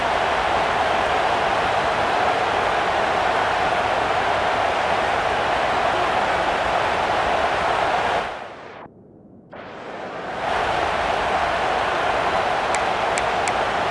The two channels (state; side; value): identical; both; correlation 1.00